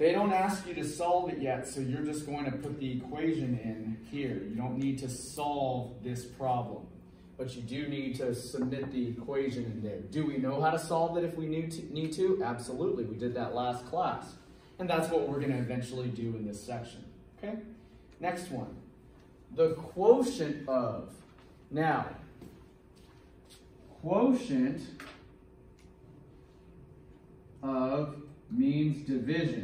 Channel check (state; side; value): identical; both; correlation 1.00